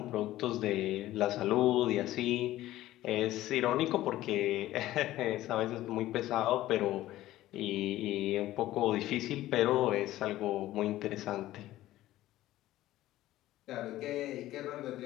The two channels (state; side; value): quieter; right; 15.1 dB